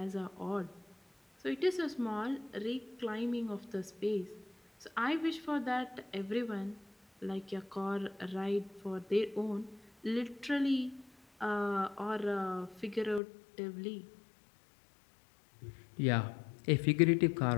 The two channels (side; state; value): right; drops out; at 13.2 s